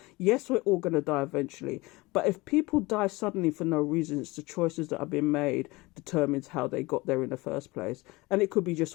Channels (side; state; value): right; quieter; 22.5 dB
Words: Yes, we're all going to die eventually. But if people die suddenly for no reason, it's the choices that have been made determines how they got there in the first place. And it could be just